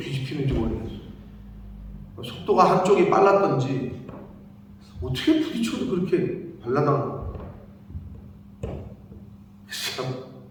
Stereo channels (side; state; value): both; identical; correlation 1.00